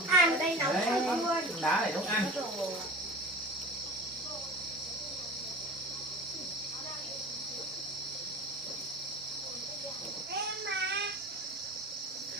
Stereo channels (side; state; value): both; normal; correlation 0.37